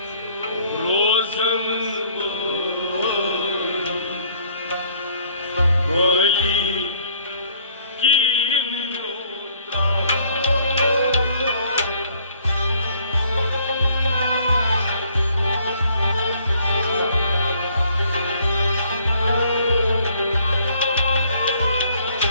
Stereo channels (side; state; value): both; inverted; correlation -0.61